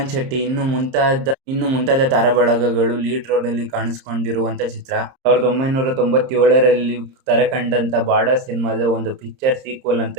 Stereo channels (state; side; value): late; left; 30 ms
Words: ಶೆಟ್ಟಿ ಇನ್ನು ಮುಂತಾದ ತಾರಾಬಳಗಗಳು ಲೀಡ್ ರೋಲ್ ಅಲ್ಲಿ ಕಾಣಿಸಿಕೊಂಡಿರುವಂತ ಚಿತ್ರ. 1997ರಲ್ಲಿ ತೆರೆಕಂಡಂತ ಬಾರ್ಡರ್ ಸಿನಿಮಾದ ಒಂದು ಪಿಕ್ಚರ್ ಸೀಕ್ವಲ್